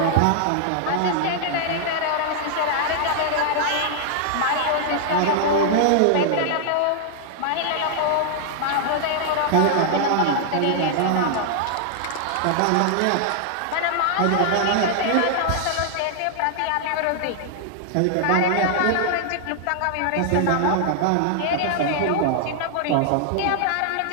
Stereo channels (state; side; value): different; both; correlation -0.01